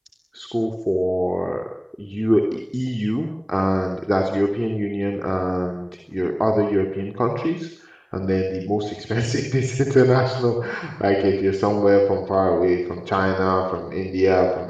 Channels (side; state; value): both; identical; correlation 1.00